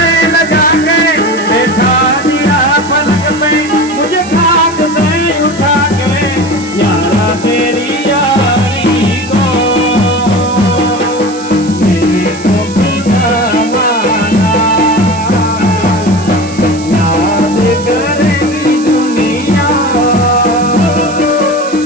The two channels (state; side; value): noise; right; hiss, 16 dB below the sound